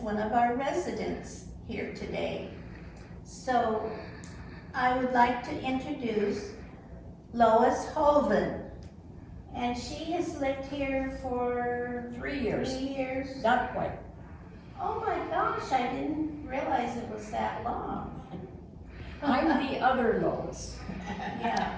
of our residents here today. So I would like to introduce Lois Hoven, and she has lived here for 3 years. 3 years. Not quite. Oh my gosh, I didn't realize it was that long. I'm the other Lois. Yeah.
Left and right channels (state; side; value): identical; both; correlation 1.00